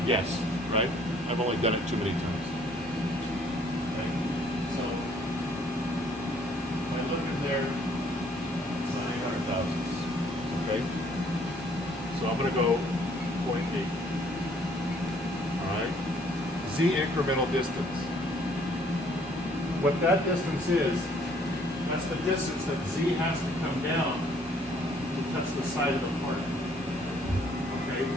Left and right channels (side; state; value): both; normal; correlation 0.62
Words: guess, right? I've only done it too many times. Okay. So if I look in there, it's not 800 thousandths. Okay. So I'm going to go 0.8. All right. Z incremental distance. What that distance is, that's the distance that Z has to come down to touch the side of the part. Okay.